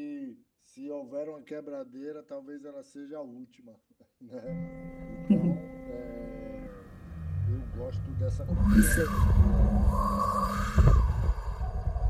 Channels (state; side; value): identical; both; correlation 1.00